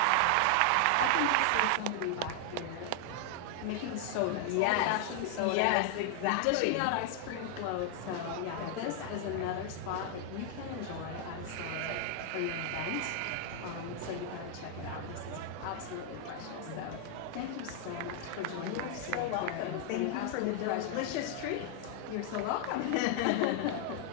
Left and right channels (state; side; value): different; both; correlation 0.00